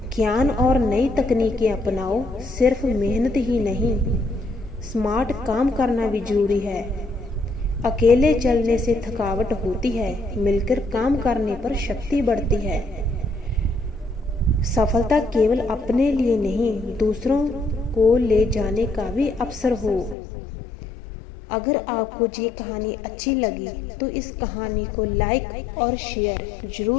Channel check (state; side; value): drops out; right; at 20.2 s